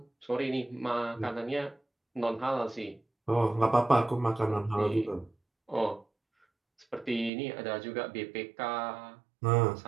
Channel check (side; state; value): left; drops out; at 7.3 s